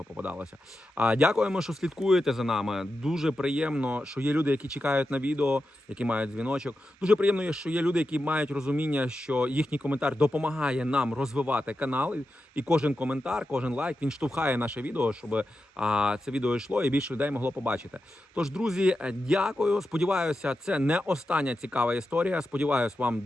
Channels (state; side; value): normal; both; correlation 0.90